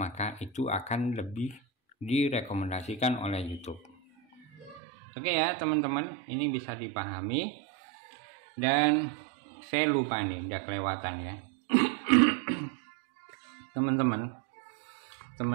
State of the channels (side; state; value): left; drops out; at 4.8 s